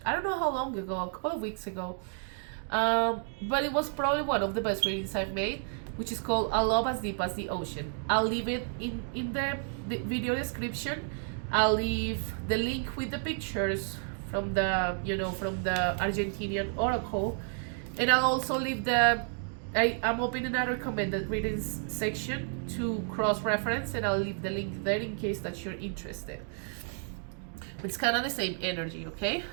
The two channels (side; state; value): left; silent; 57 dB below the other